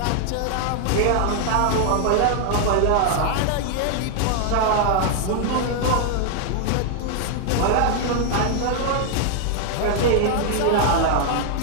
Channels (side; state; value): both; different; correlation 0.00